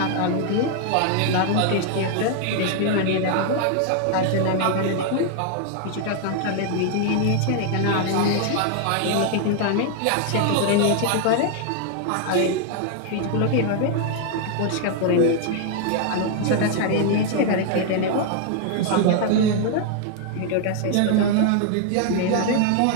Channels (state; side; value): different; both; correlation 0.00